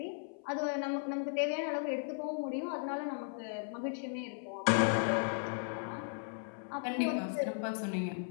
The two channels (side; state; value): right; silent; 54 dB below the other